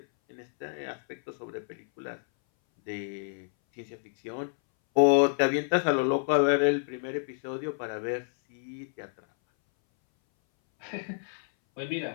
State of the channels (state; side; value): silent; right; 59 dB below the other